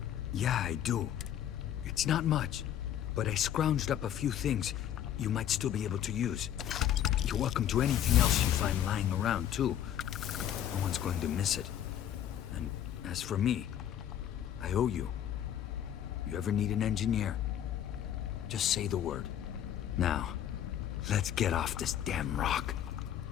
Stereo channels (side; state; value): right; quieter; 10.5 dB